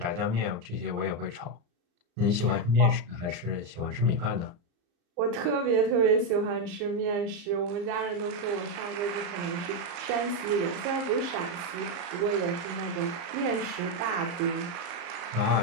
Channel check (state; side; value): late; left; 34 ms